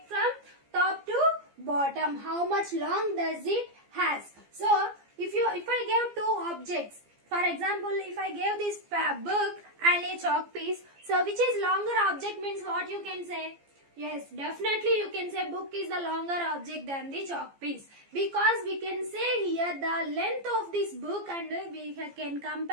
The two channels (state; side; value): late; left; 15 ms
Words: from top to bottom. How much long does it has? So if I gave two objects, for example, if I gave this book and a chalk piece, so which is longer object means what you can say? Yes, definitely you can say book is the longer object than the chalk piece, because we can say here the length of this book and we can